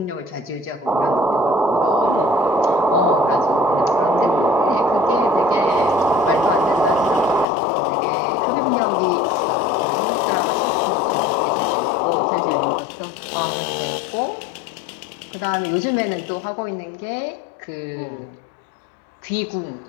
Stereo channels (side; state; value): right; drops out; at 7.5 s